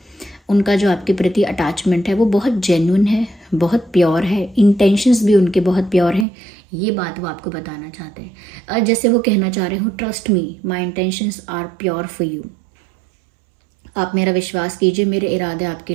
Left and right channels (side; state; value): left; drops out; at 6.2 s